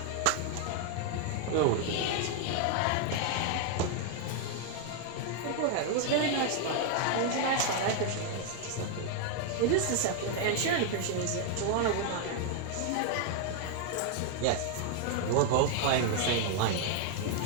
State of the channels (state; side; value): different; both; correlation 0.00